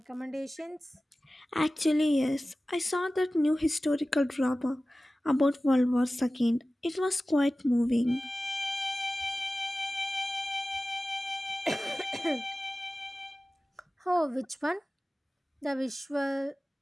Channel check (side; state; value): both; normal; correlation 0.96